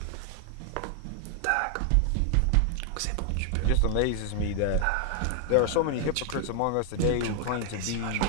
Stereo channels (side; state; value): both; different; correlation 0.00